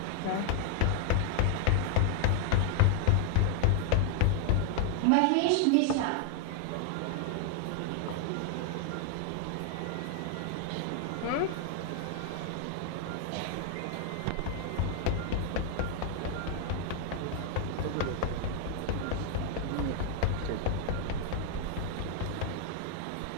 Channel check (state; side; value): different; both; correlation 0.00